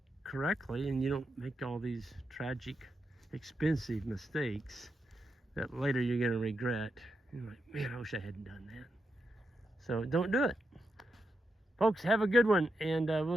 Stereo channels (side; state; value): both; normal; correlation 0.85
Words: correctly, and you don't make all these tragic, expensive mistakes that later you're going to regret. You're like, man, I wish I hadn't done that. So don't do it. Folks, have a good one, and